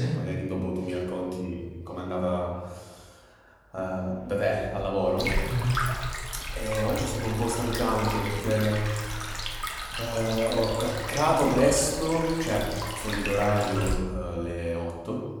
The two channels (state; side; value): identical; both; correlation 1.00